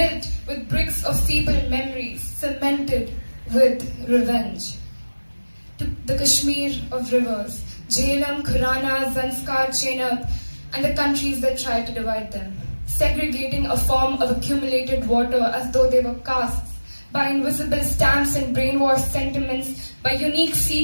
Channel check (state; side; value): inverted; both; correlation -1.00